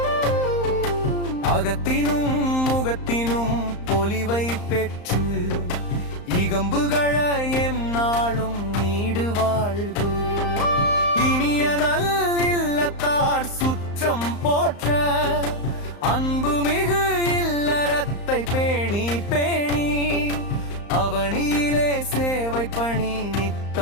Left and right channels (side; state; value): right; late; 35 ms